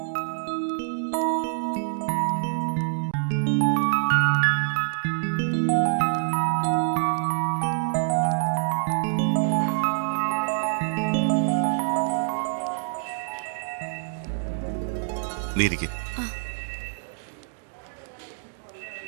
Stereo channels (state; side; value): silent; left; digital silence